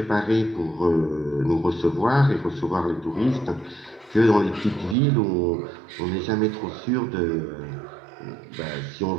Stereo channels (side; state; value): left; drops out; at 5.0 s